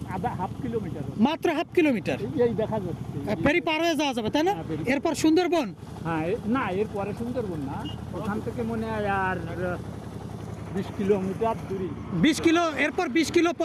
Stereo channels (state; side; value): identical; both; correlation 1.00